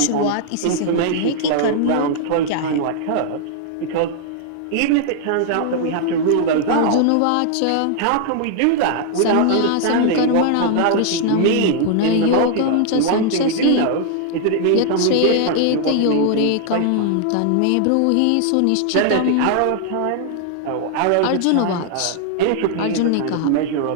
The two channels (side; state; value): both; different; correlation 0.00